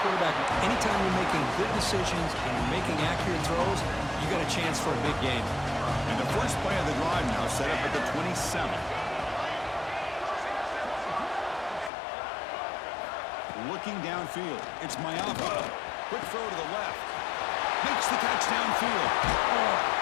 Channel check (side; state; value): right; drops out; at 11.9 s